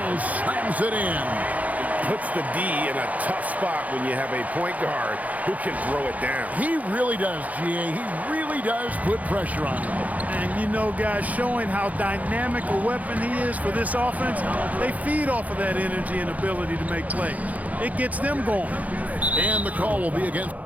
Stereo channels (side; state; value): left; late; 0.074 ms